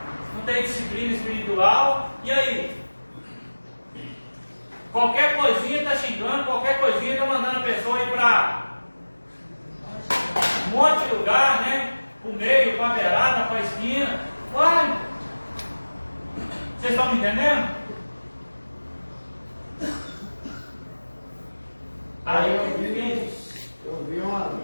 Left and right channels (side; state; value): both; inverted; correlation -1.00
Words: não tem disciplina espiritual. E aí? Qualquer coisinha está xingando, qualquer coisinha está mandando a pessoa ir para um monte de lugar, né? Para o meio, para a beirada, para a esquina. Uai! Vocês estão me entendendo? Aí eu vi